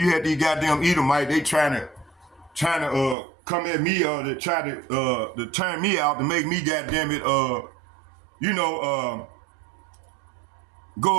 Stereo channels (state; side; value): drops out; left; at 3.2 s